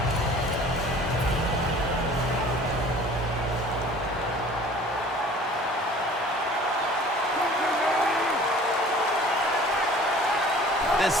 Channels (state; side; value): normal; both; correlation 0.48